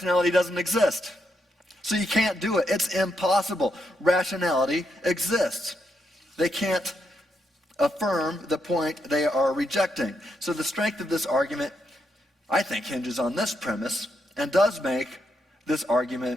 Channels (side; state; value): both; normal; correlation 0.80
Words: doesn't exist. So you can't do it. It's impossible. Rationality exists. They can't affirm the point they are rejecting. So the strength of this argument, I think, hinges on this premise and does make this